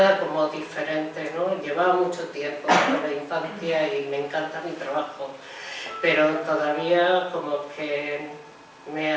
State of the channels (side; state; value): both; identical; correlation 1.00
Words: como diferente, ¿no? Llevaba mucho tiempo en la infancia y me encanta mi trabajo, pero todavía como que me